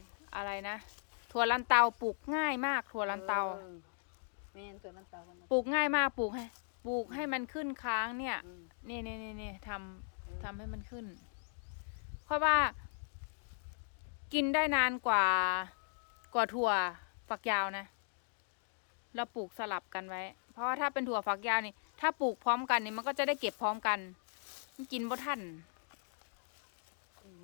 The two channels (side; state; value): right; silent; digital silence